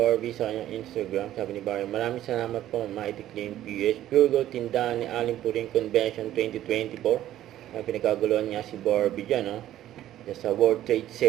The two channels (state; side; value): quieter; left; 12.9 dB